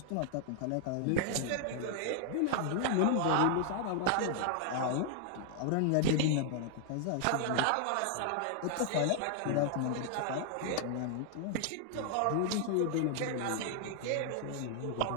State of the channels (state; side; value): different; both; correlation 0.00